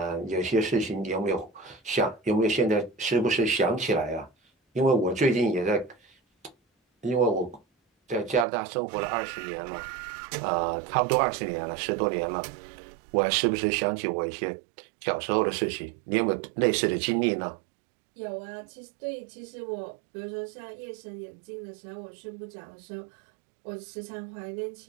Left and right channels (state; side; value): drops out; left; at 8.5 s